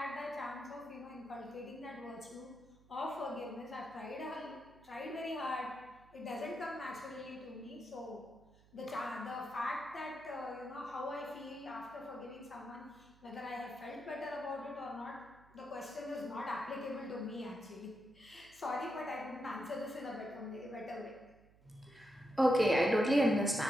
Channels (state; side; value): noise; right; hum, 26 dB below the sound